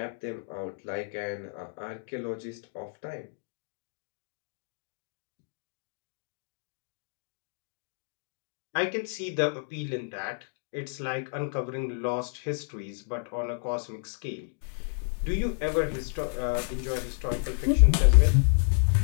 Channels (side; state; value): right; silent; 58 dB below the other